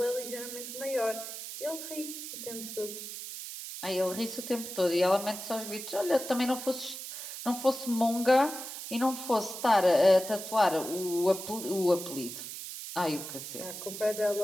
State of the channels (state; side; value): noise; right; hiss, 9 dB below the sound